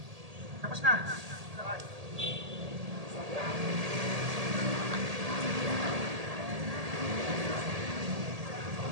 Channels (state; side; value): late; left; 1.8 ms